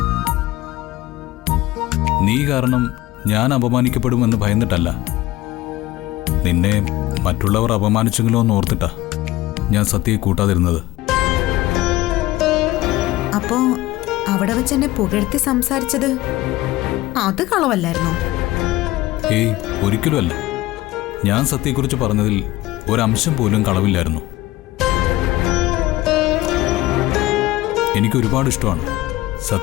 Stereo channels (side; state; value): right; quieter; 17.6 dB